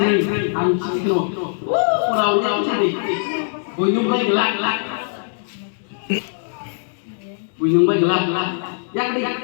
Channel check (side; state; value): right; silent; digital silence